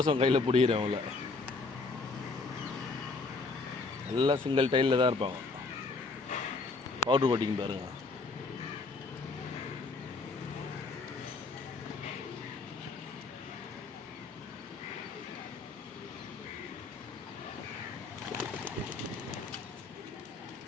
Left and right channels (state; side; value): quieter; right; 3.8 dB